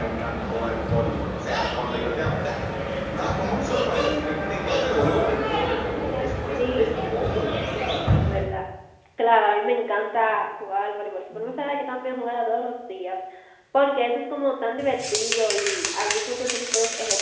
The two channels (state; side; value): identical; both; correlation 1.00